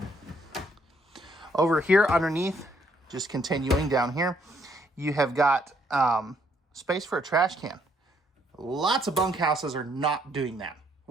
Over here underneath, just continuing down here, you have got space for a trash can. Lots of bunkhouses are not doing that.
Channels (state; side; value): normal; both; correlation 0.69